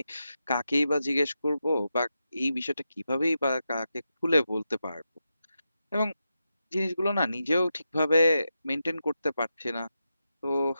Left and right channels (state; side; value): inverted; both; correlation -0.88